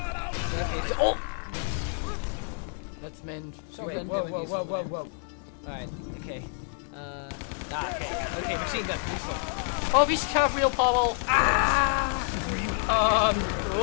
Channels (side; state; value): right; silent; 57 dB below the other